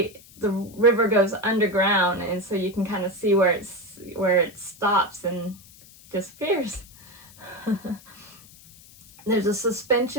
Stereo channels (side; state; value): left; noise; hiss, 23 dB below the sound